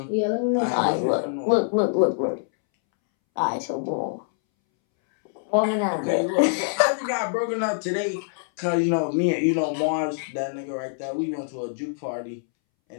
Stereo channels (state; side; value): silent; right; 62 dB below the other